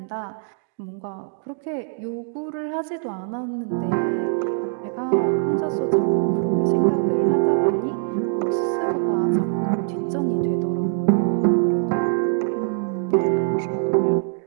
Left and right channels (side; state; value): left; silent; digital silence